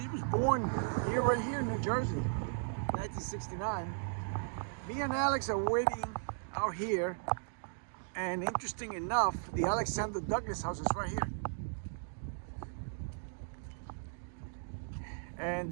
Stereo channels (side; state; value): left; silent; digital silence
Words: was born here, right here in New Jersey, 1969. Me and Alex are waiting out here, and interesting enough, the Alexander Douglas house is right here. And